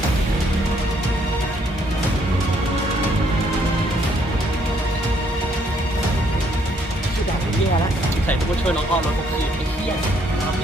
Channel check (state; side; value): normal; both; correlation 0.68